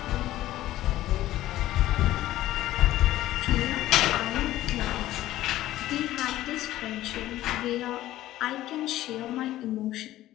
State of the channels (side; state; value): right; quieter; 14.8 dB